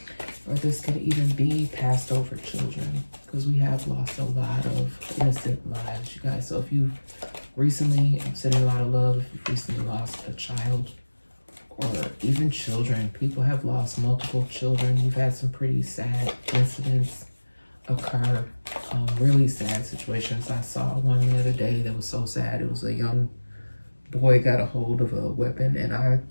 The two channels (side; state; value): both; inverted; correlation -1.00